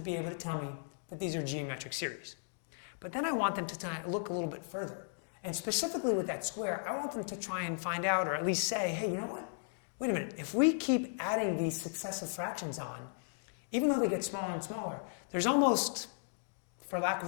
be able to tell me that these are geometric series. But then I want them to look a little bit further. And specifically with that square, I want them to try and find out, or at least say, hey, you know what? Wait a minute, if we keep adding these successive fractions on, even though they get smaller and smaller, there's almost, for lack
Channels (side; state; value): right; silent; digital silence